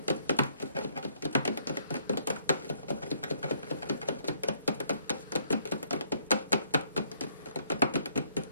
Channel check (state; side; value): inverted; both; correlation -0.69